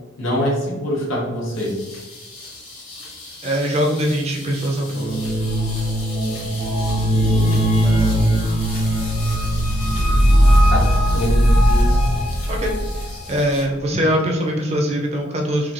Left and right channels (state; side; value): normal; both; correlation 0.76